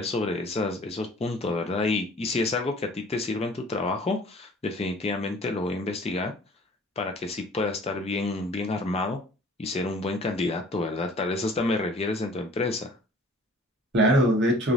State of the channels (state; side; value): normal; both; correlation 0.50